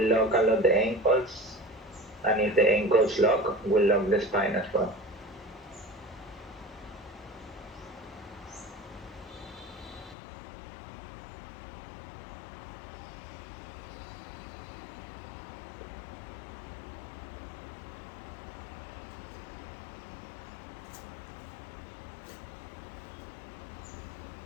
lock a lot the ankles, and if the ankles lock, will lock the spine as well.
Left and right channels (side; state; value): right; drops out; at 10.2 s